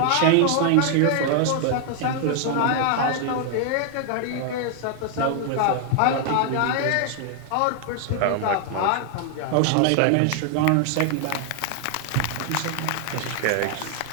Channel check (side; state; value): both; different; correlation 0.00